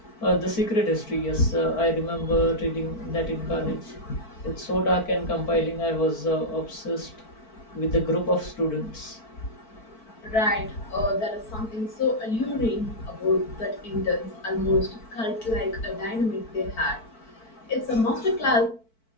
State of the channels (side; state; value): right; late; 4.5 ms